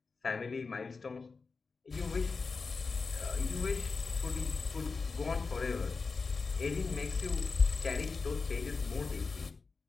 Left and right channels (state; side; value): quieter; right; 4.4 dB